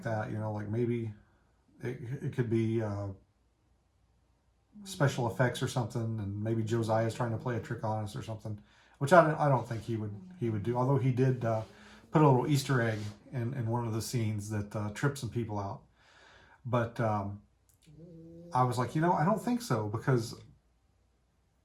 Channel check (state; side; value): identical; both; correlation 1.00